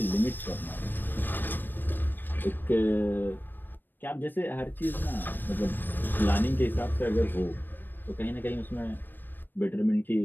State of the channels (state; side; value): late; right; 0.093 ms